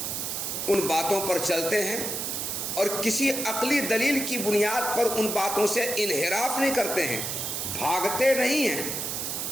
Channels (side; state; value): right; noise; hiss, 3 dB below the sound